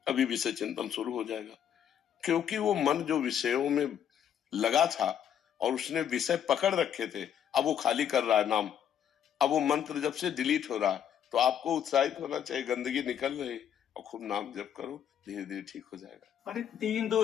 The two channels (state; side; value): quieter; right; 9.3 dB